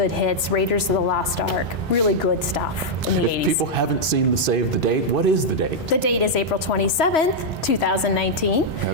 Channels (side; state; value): both; normal; correlation -0.04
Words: hits. Raiders of the Lost Ark, really good stuff in the 80s. If people haven't seen the save the date, what is the date? The date is April 27th, 2019.